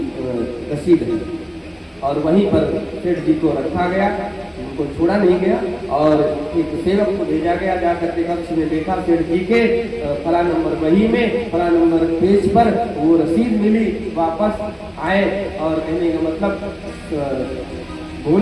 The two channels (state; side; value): identical; both; correlation 1.00